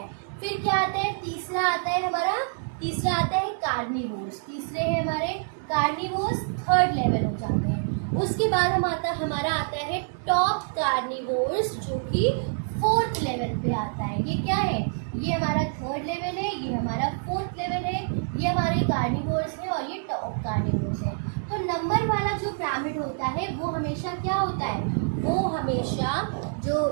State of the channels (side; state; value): left; silent; 58 dB below the other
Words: फिर क्या आता है, तीसरा आता है हमारा, तीसरा आता है कार्निवोर्स, तीसरे है हमारे कार्निवोर्स, थर्ड लेवल हो जाते हैं। उसके बाद हमारा आता है टॉप कार्निवोर्स जो कि फोर्थ लेवल पे आता है। ये क्या है, ये हमारा थर्ड लेवल है, ये हमारा फोर्थ लेवल है, ये हमारे कार्निवोर्स है और ये टॉप कार्निवोर्स है। तो नंबर वाला जो पिरामिड होता है वो हमेशा क्या होता है, वो हमेशा जो